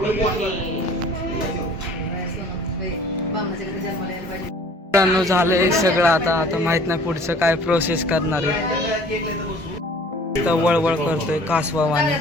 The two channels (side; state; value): both; normal; correlation 0.50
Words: झालंय सगळं. आता माहित नाही पुढचं काय प्रोसेस करणार आहे. वळवळ करतोय